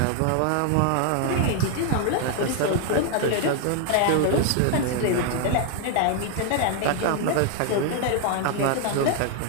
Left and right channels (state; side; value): different; both; correlation 0.00